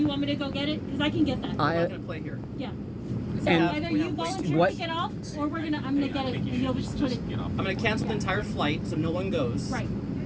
want me to go get it? Because I can get that. I'm not gonna play here. Yeah. So either you volunteer to get off, or I'm gonna get it, and you'll just put it. I'm gonna cancel the entire flight so no one goes. Right.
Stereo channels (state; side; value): identical; both; correlation 1.00